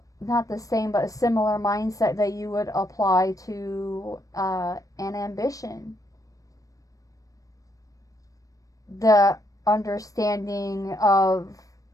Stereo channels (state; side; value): late; right; 0.16 ms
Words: not the same, but a similar mindset that you would apply to an ambition. The understanding of